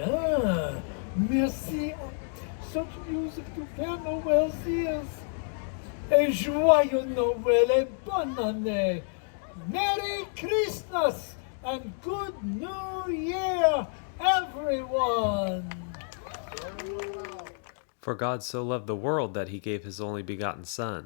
Merci. Such music to Père Noël's ears. Et joyeux Noël et bonne année. Merry Christmas and good New Year, everyone. For God so loved the world that he gave his only begotten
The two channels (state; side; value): silent; right; 58 dB below the other